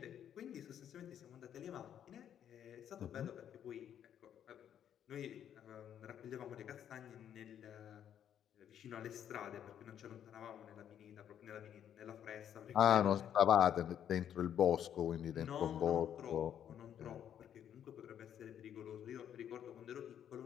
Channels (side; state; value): right; quieter; 9.6 dB